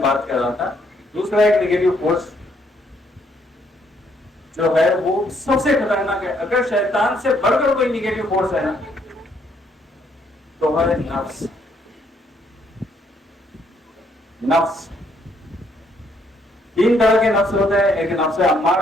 بات کر رہا تھا۔ دوسرا ایک نیگیٹو فورس جو ہے وہ سب سے خطرناک ہے، اگر شیطان سے بڑھ کر کوئی نیگیٹو فورس ہے نا تو ہے نفس۔ نفس تین طرح کے نفس ہوتے ہیں، ایک نفس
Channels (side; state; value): both; normal; correlation 0.70